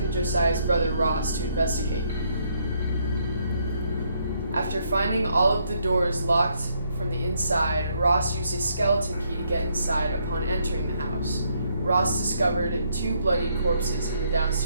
Josiah's brother Ross to investigate. After finding all of the doors locked from the inside, Ross used a skeleton key to get inside upon entering the house. Ross discovered 2 bloodied corpses in the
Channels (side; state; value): both; inverted; correlation -0.73